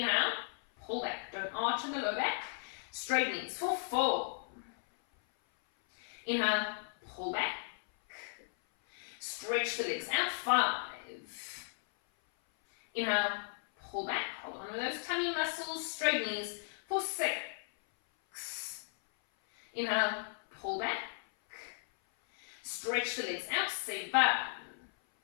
pull back. Don't arch in the low back. Straight knees for 4. Inhale, pull back. Stretch the legs out, 5. Inhale, pull back. Hold on with those tummy muscles. Straight knees for 6. Inhale, pull back. Stretch the legs out, 7.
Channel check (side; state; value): right; silent; 54 dB below the other